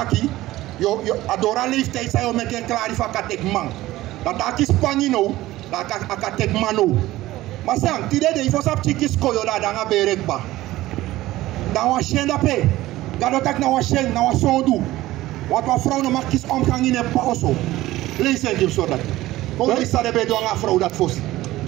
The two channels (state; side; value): quieter; left; 16.6 dB